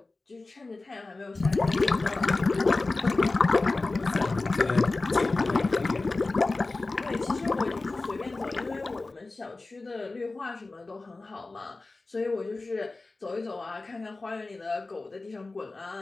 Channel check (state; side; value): quieter; right; 3.4 dB